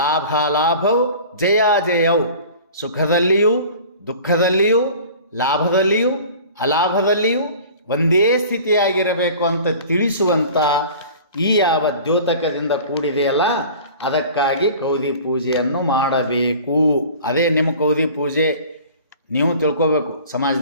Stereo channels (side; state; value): both; inverted; correlation -0.43